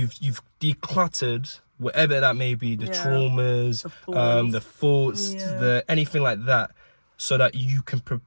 decluttered whatever that may be, the traumas, the thoughts, the anything like that, so that you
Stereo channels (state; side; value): inverted; both; correlation -1.00